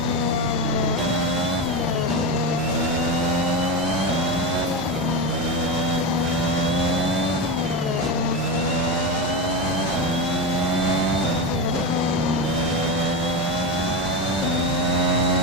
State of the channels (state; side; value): normal; both; correlation 0.16